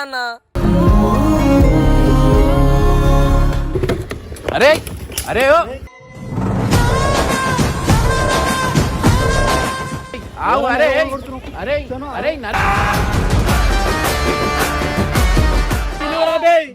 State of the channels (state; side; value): identical; both; correlation 1.00